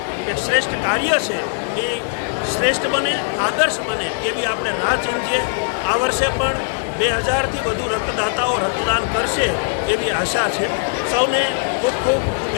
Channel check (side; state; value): right; silent; digital silence